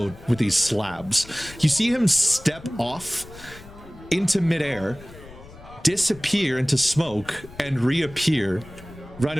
with these slabs. You see him step off into midair, disappear into smoke, and reappear right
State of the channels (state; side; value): noise; left; rumble, 19 dB below the sound